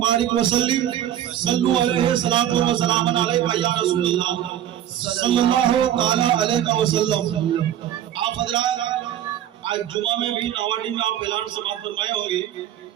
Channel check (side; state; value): left; quieter; 11.2 dB